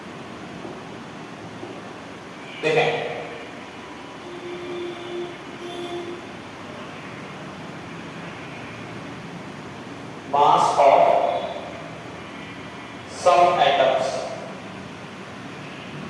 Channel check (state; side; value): identical; both; correlation 1.00